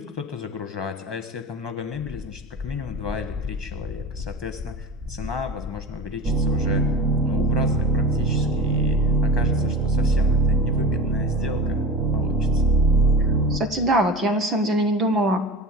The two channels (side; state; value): both; normal; correlation 0.31